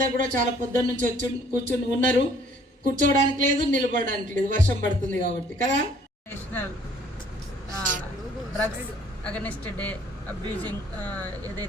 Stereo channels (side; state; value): both; normal; correlation 0.59